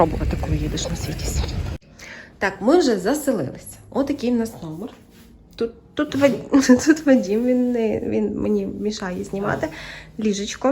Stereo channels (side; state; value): both; identical; correlation 1.00